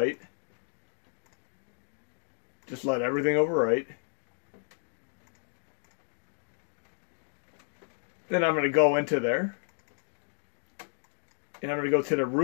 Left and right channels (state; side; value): silent; right; 57 dB below the other